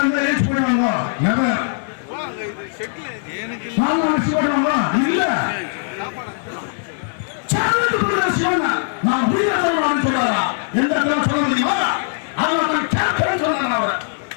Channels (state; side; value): silent; right; 63 dB below the other